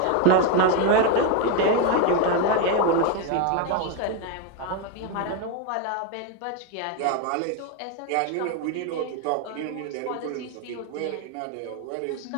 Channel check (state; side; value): different; both; correlation 0.02